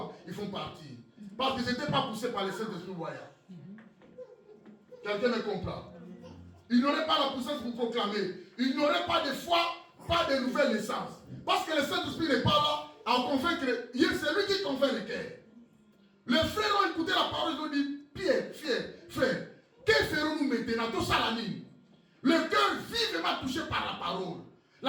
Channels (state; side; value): identical; both; correlation 1.00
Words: Ils font partie. Parce qu'ils n'étaient pas poussés par le Saint-Esprit voyant. Quelqu'un me comprend? Il n'aurait pas la puissance pour proclamer. Il n'aurait pas de foi, pas de nouvelle naissance. Parce que le Saint-Esprit n'est pas là à convaincre. C'est lui qui convainc les cœurs. Les frères ont écouté la parole, ils ont dit, Pierre, frère, que ferons-nous maintenant? Tout ça la ligne. Le cœur vivement touché par la parole.